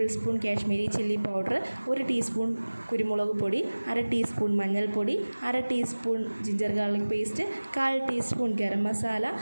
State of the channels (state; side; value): inverted; both; correlation -1.00